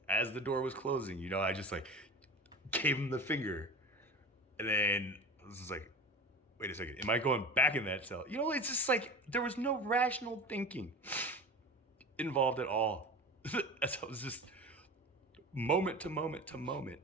as the door was closing, I just like gave him the finger. And then I was just like, wait a second, am I going back in that cell? It's just like, there was no rational thinking involved at all. As I was just moment to moment to moment.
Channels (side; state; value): both; normal; correlation 0.32